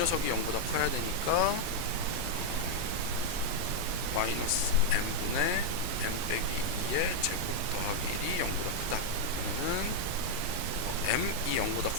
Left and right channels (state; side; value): normal; both; correlation 0.00